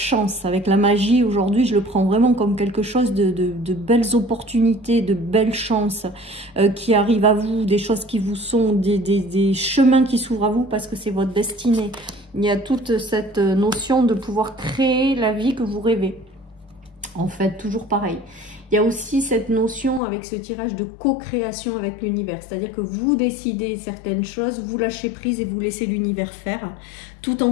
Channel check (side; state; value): right; drops out; at 20.0 s